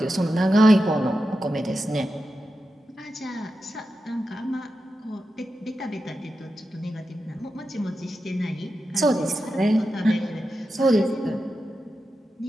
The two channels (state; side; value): normal; both; correlation 0.90